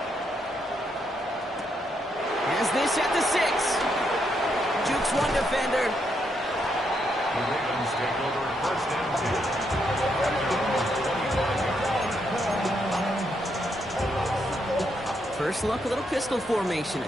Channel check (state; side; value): normal; both; correlation 0.78